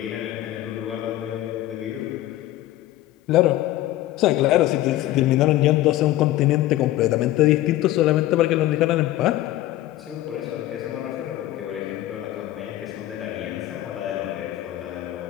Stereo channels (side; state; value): right; quieter; 15.0 dB